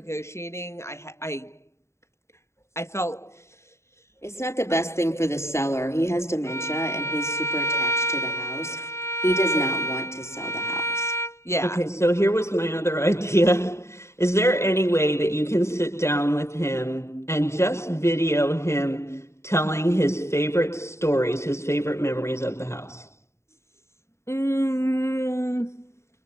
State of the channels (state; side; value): late; right; 0.13 ms